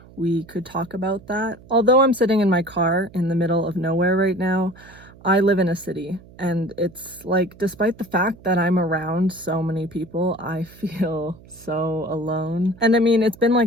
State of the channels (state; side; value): noise; right; hum, 22 dB below the sound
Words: we could talk about that. Although I'm sitting in my car in the middle of nowhere right now, I live in a city, and it's like, despite the fact that I'm around so many people, I feel so alone. And I mean, it's been